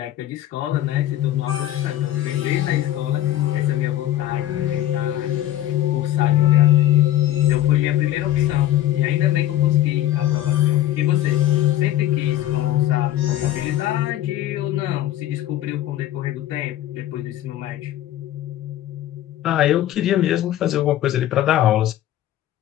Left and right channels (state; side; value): quieter; right; 13.2 dB